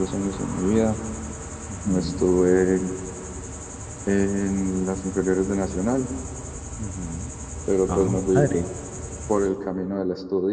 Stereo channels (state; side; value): identical; both; correlation 1.00